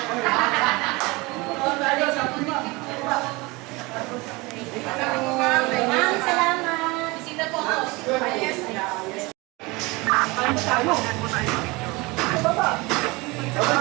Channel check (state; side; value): quieter; left; 24.1 dB